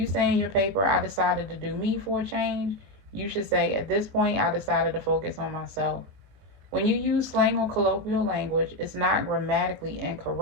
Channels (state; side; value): late; left; 21 ms